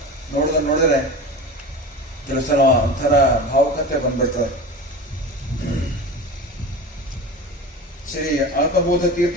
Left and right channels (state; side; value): normal; both; correlation 0.31